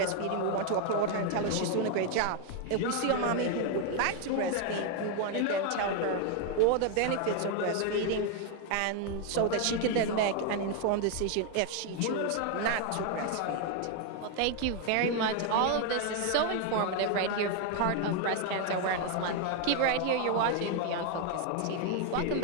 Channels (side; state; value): both; different; correlation 0.01